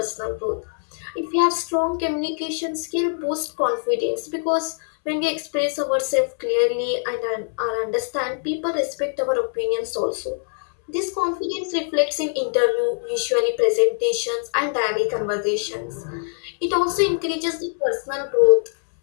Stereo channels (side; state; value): right; silent; 63 dB below the other